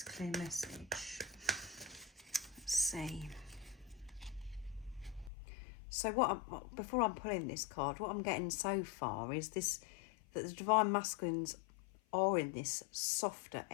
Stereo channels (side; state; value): right; drops out; at 5.3 s